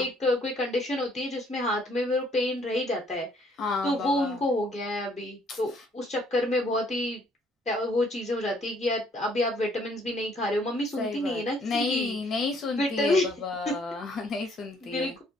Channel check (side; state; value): both; normal; correlation 0.64